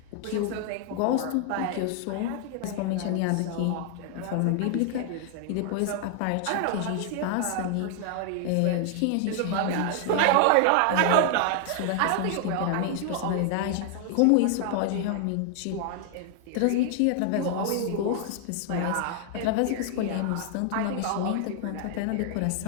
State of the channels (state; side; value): different; both; correlation 0.00